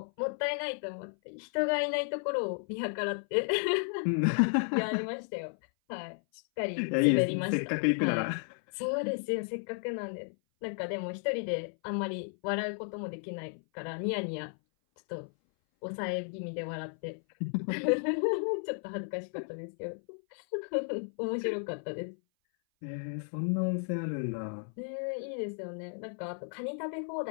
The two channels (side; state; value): right; silent; 55 dB below the other